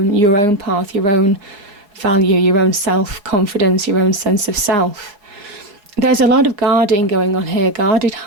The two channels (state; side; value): late; left; 4.8 ms